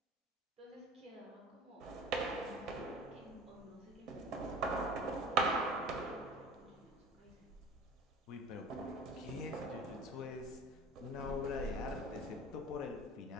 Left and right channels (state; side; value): normal; both; correlation 0.41